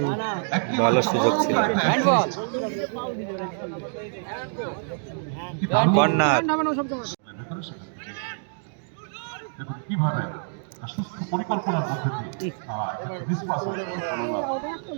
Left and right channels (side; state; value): left; silent; 61 dB below the other